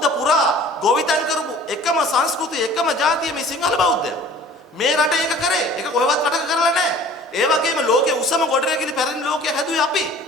පුරා ගොවිතැන් කරපු එකම සංස්කෘතිය එකම ජාතිය මේ සිංහල බෞද්ධය මේ රටේ ඒක කරේ ඒක කොහෙවත් රටක කරලා නැහැ. ඒ වගේම ලෝකයේ උසම ගොඩනැගිලි පැරණි ලෝකයේ හැදුවේ අපි.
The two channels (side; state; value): both; normal; correlation 0.48